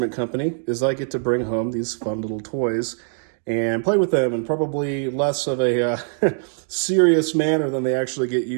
company is I get to bring home these fun little toys and play with them in probably less of a serious manner than they actually get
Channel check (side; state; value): left; silent; 63 dB below the other